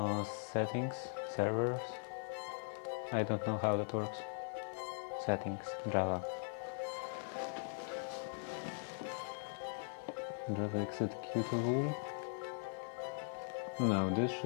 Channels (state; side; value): silent; right; digital silence